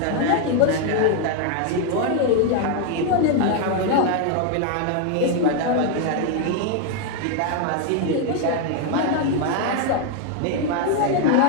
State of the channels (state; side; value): different; both; correlation 0.01